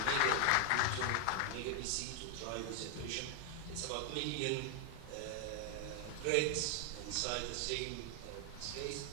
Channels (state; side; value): different; both; correlation 0.00